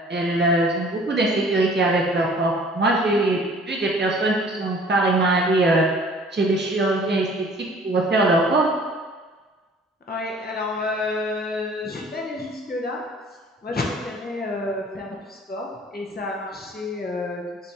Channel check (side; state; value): both; normal; correlation 0.51